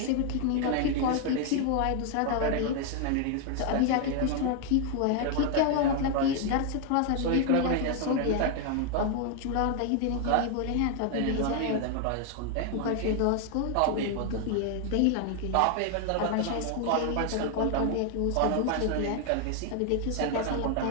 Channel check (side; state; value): both; different; correlation 0.00